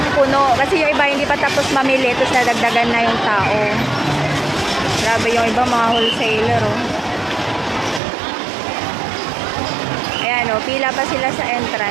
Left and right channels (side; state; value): left; drops out; at 8.0 s